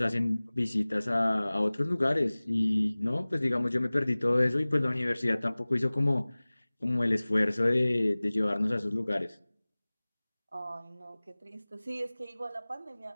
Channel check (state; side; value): inverted; both; correlation -0.99